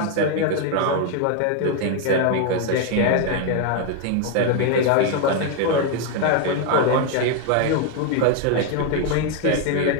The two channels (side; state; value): both; different; correlation 0.01